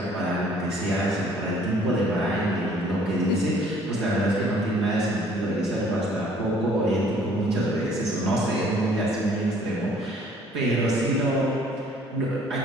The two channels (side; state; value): both; normal; correlation 0.58